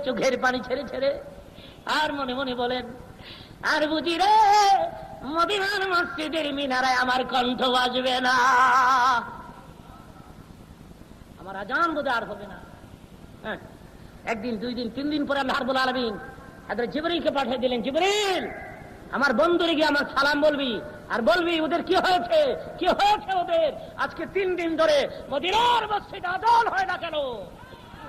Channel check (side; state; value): both; identical; correlation 1.00